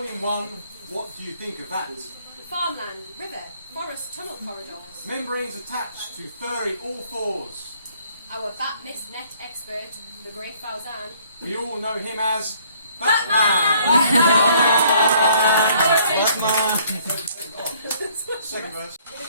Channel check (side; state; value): both; inverted; correlation -0.61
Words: in one, what do you think of that? Farmland, river, forest tunnel corridors. Membranes attached to furry all fours. Our bat mist net expert, the great Fauzan. We all know him as Second verse.